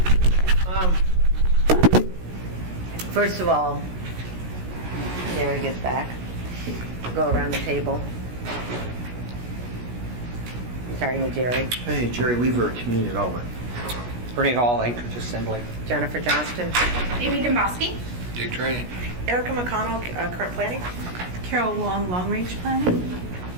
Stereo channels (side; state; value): left; late; 17 ms